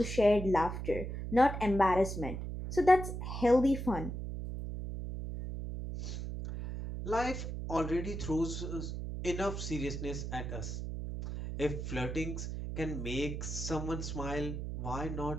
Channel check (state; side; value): noise; right; hum, 5 dB below the sound